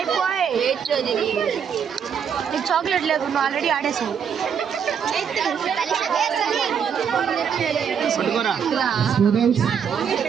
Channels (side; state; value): left; quieter; 7.5 dB